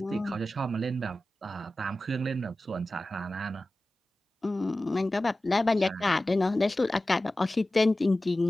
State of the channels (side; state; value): both; normal; correlation 0.95